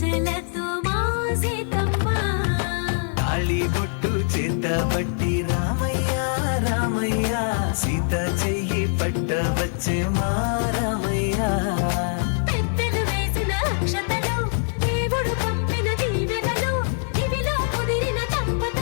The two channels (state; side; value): silent; right; digital silence